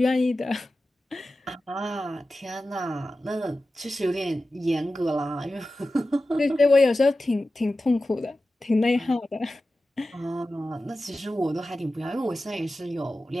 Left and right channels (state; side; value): normal; both; correlation 0.94